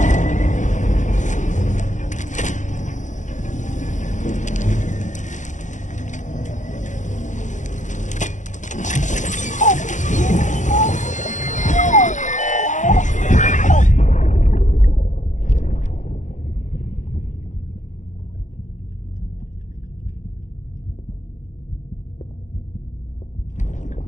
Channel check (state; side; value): late; right; 0.36 ms